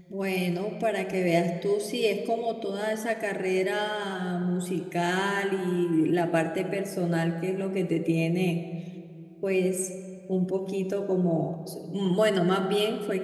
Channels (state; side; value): identical; both; correlation 1.00